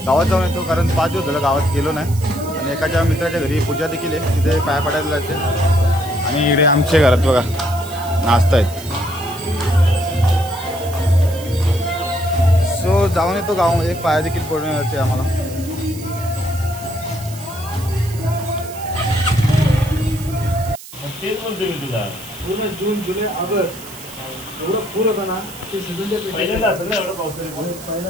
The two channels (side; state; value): right; noise; hiss, 16 dB below the sound